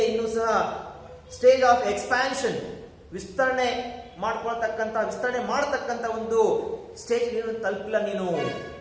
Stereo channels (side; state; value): both; identical; correlation 1.00